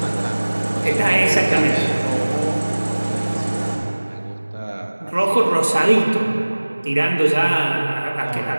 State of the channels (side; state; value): both; inverted; correlation -1.00